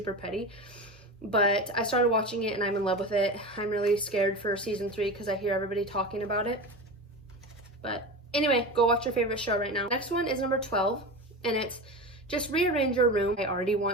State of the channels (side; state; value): both; normal; correlation 0.26